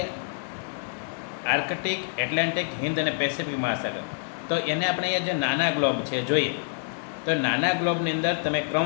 આર્કટિક, એટલાન્ટિક, હિન્દ અને પેસિફિક મહાસાગર, તો એને આપણે અહીંયા જે નાના ગ્લોબ છે જોઈએ તો નાના ગ્લોબની અંદર તમે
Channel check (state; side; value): silent; right; digital silence